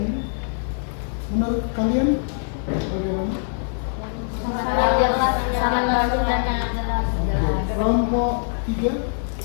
Menurut kalian bagaimana? Kelompok 3,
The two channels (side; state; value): right; silent; digital silence